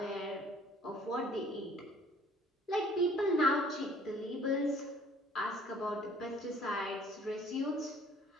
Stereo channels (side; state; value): both; normal; correlation 0.56